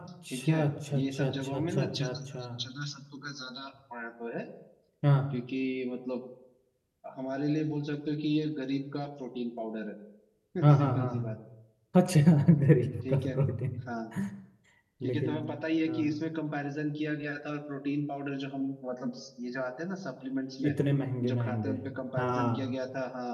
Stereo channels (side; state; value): both; identical; correlation 1.00